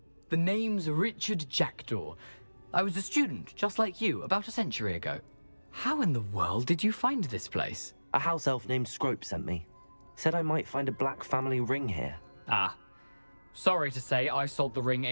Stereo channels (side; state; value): both; inverted; correlation -1.00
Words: The name's Richard Jackdaw. I was a student, just like you, about a century ago. How in the world did you find this place? A house elf named Scrope sent me. Said I might find a black family ring here. Ah. Sorry to say, I sold the ring